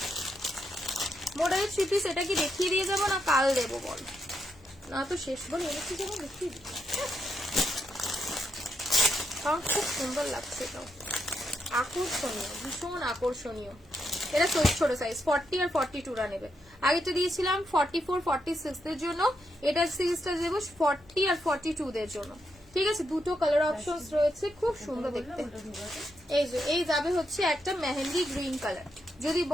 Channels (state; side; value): normal; both; correlation 0.81